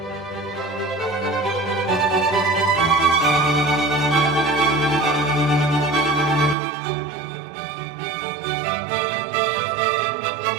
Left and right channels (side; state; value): left; drops out; at 6.6 s